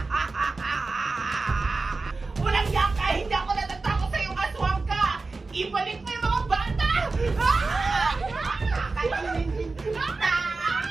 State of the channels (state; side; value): quieter; left; 3.8 dB